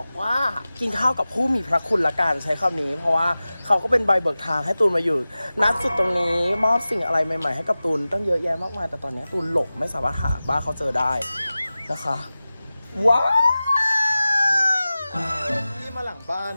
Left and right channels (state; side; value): inverted; both; correlation -0.96